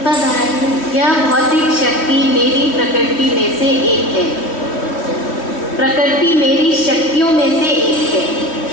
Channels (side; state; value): right; late; 3.1 ms